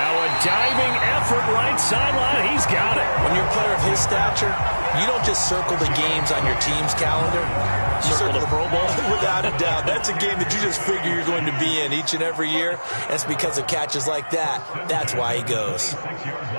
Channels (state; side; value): inverted; both; correlation -1.00